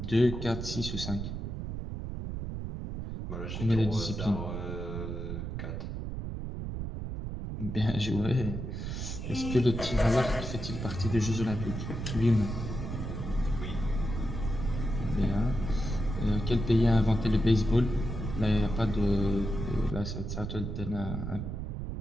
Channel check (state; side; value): noise; right; rumble, 5 dB below the sound